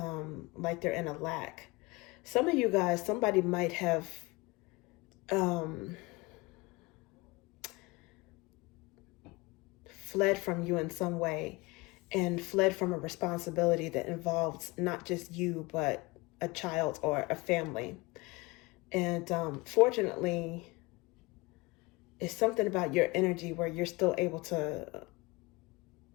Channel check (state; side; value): quieter; right; 24.1 dB